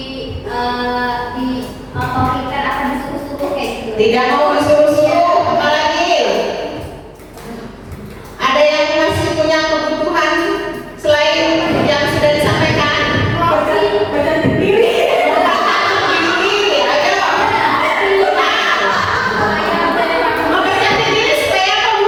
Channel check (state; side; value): identical; both; correlation 1.00